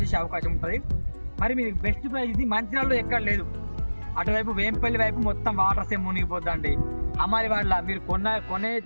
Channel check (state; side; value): inverted; both; correlation -1.00